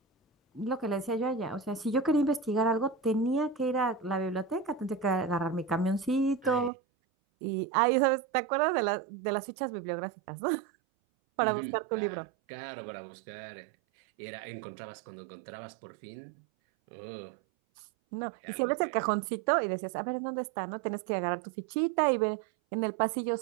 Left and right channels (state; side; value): drops out; left; at 6.7 s